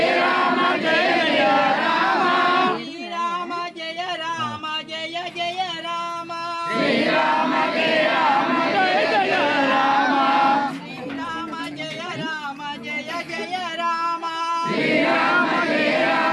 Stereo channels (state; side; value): identical; both; correlation 1.00